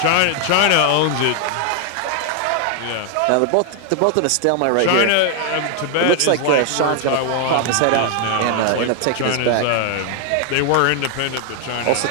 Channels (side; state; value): both; different; correlation 0.00